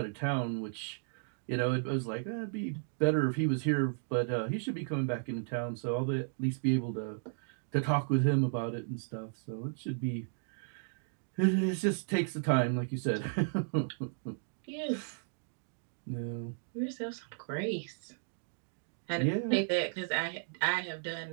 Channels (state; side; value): silent; left; digital silence